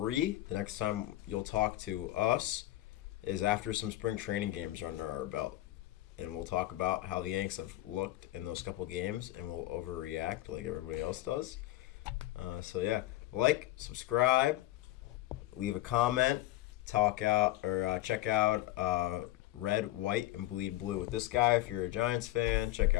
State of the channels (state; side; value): quieter; right; 16.0 dB